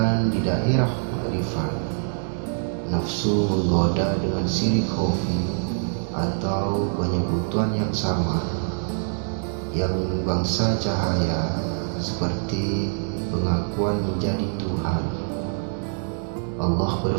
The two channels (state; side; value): silent; left; digital silence